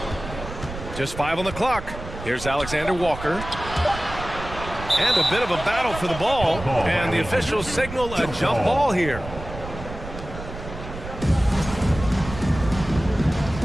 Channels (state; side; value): noise; right; rumble, 11 dB below the sound